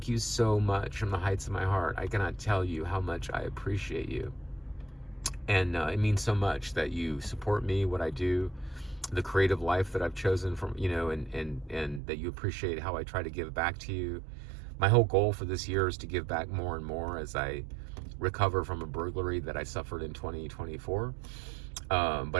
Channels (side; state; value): left; drops out; at 12.0 s